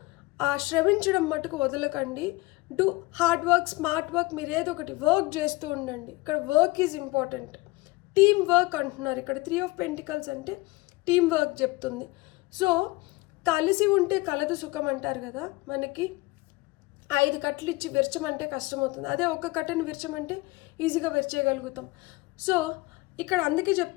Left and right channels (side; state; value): right; quieter; 22.1 dB